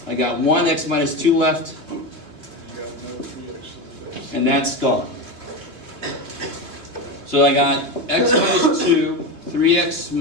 I got 1 x minus 2 left, You got another 3x to the base. and that's gone. So I got x minus 2, 3x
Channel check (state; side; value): late; left; 2.7 ms